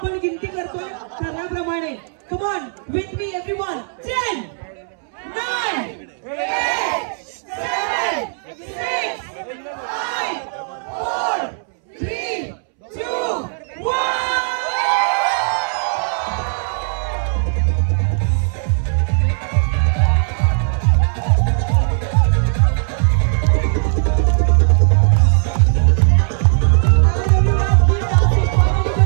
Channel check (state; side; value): silent; left; 67 dB below the other